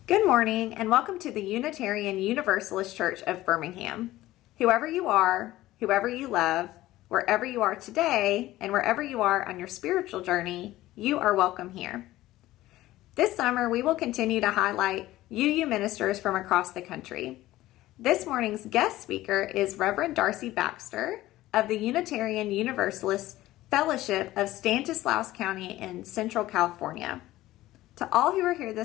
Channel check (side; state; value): right; quieter; 16.1 dB